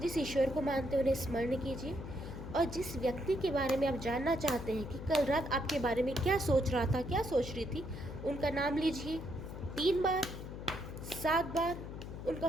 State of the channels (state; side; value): noise; left; hum, 9 dB below the sound